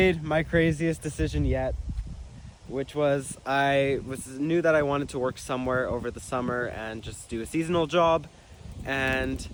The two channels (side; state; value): both; identical; correlation 1.00